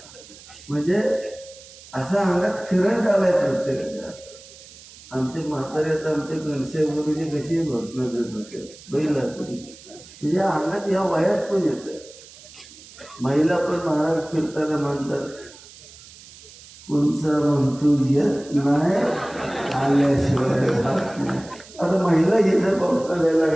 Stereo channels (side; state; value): right; noise; hiss, 20 dB below the sound